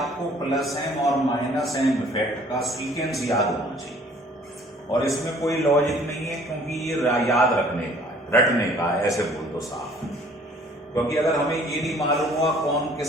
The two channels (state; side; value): normal; both; correlation 0.55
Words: प्लस एम और माइनस एम इफेक्ट का सीक्वेंस याद होना चाहिए और इसमें कोई लॉजिक नहीं है क्योंकि ये याद रखने का है, रटने का है, ऐसे बोल दो साफ। क्योंकि अगर हमें ये नहीं मालूम हुआ कौन